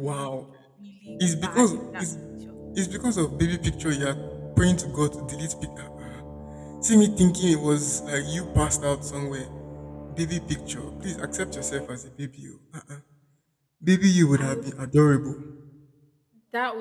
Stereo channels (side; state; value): both; identical; correlation 1.00